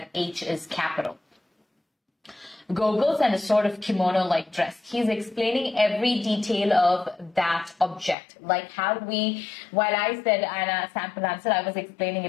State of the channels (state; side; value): drops out; right; at 8.2 s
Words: H is capital. Goggles and a sort of kimono-like dress. He's explaining every detail of that object. Like how while I said in a sample answer, I was explaining